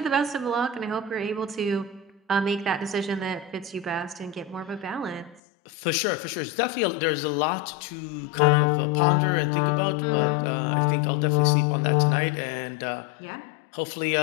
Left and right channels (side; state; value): right; drops out; at 5.4 s